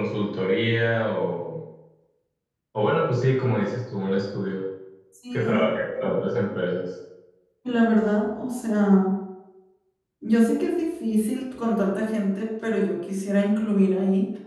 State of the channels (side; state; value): both; identical; correlation 1.00